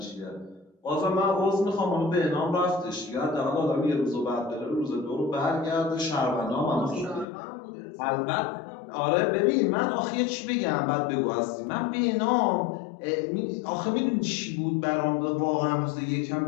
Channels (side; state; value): right; drops out; at 7.2 s